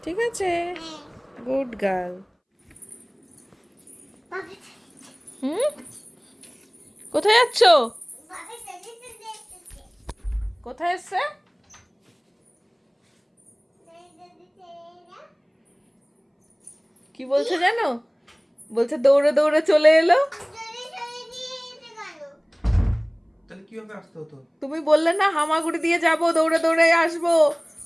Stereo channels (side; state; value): both; identical; correlation 1.00